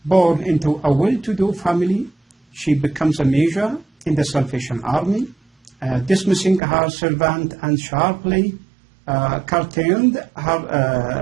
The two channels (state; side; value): drops out; left; at 6.6 s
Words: Born into a well-to-do family, she becomes a major in the Salvation Army, dismissing her servant and sharply curtailed